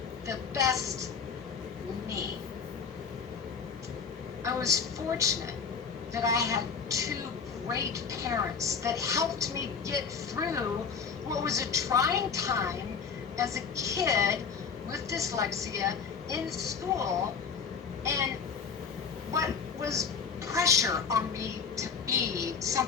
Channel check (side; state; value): right; quieter; 6.0 dB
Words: the best me. I was fortunate that I had two great parents that helped me get through what was a trying time as a kid with dyslexia in school, and what was pressure on me to be